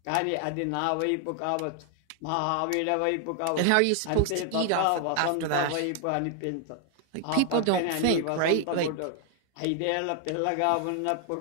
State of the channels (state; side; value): different; both; correlation 0.00